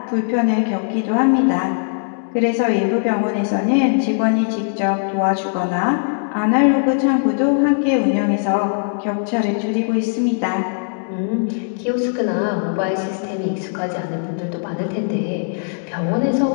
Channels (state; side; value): silent; right; digital silence